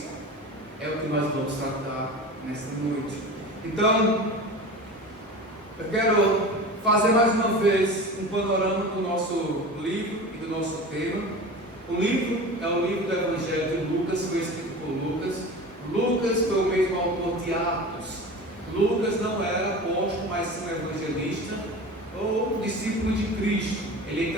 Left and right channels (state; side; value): normal; both; correlation 0.33